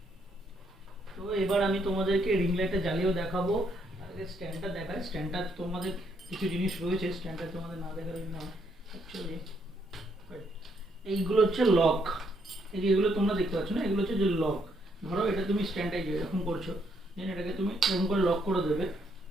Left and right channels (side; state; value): both; normal; correlation 0.73